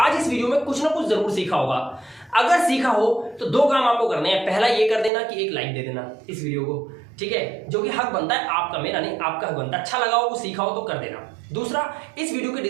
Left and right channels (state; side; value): drops out; left; at 5.1 s